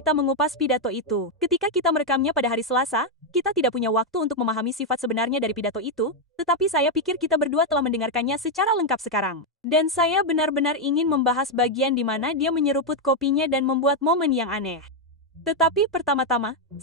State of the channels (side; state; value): both; normal; correlation 0.02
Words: mengupas pidato itu. Ketika kita merekamnya pada hari Selasa, kita tidak punya waktu untuk memahami sifat sebenarnya dari pidato itu, tetapi saya pikir kita berdua telah mendengarkannya secara lengkap sekarang. Dan saya benar-benar ingin membahas bagian di mana dia menyeruput kopinya dan membuat momen yang aneh. Tetapi pertama-tama,